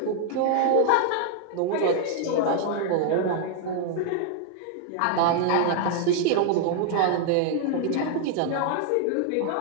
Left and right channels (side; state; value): both; different; correlation 0.00